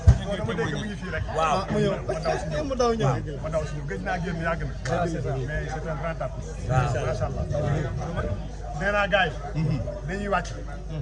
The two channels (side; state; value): both; identical; correlation 1.00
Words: waaw mu daw ñëw ma daw suñu gëj naa génn yàgg na mais c'est un grand artiste macha allah nee naa gars yi dañuy wàcc